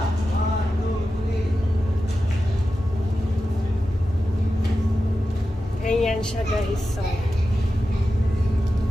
Ganyan siya, guys. So,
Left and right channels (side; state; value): both; normal; correlation 0.92